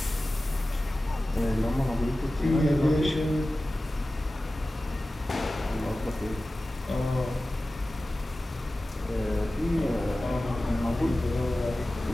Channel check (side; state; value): both; normal; correlation 0.96